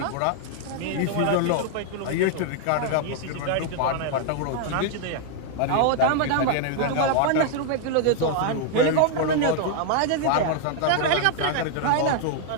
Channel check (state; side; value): different; both; correlation 0.00